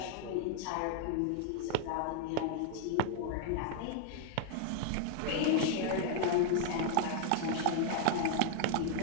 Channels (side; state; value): both; different; correlation -0.01